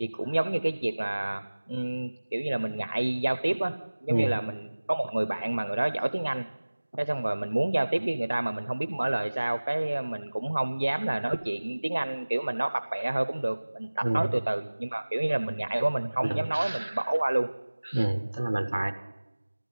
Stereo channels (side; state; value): both; inverted; correlation -1.00